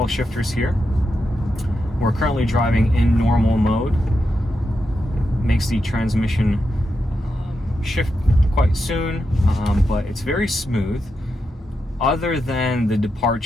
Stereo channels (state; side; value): normal; both; correlation 0.86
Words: shifters here. We're currently driving in normal mode. It makes the transmission shift quite soon, but it's very smooth. Other than the